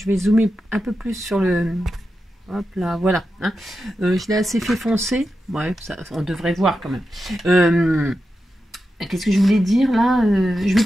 vais zoomer un peu plus sur le. Hop là, voilà. Hein. Je l'ai assez fait foncer. Ouais, ça, on devrait voir quand même. Qu'est-ce que je voulais dire là? Je vais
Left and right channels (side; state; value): both; normal; correlation 0.90